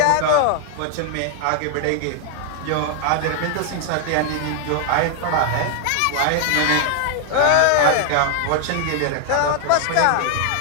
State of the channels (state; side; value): different; both; correlation 0.00